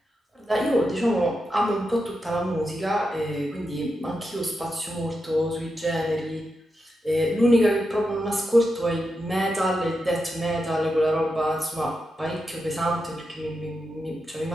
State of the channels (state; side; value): normal; both; correlation 0.87